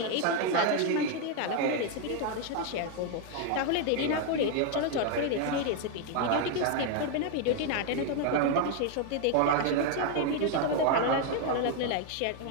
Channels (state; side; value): different; both; correlation 0.00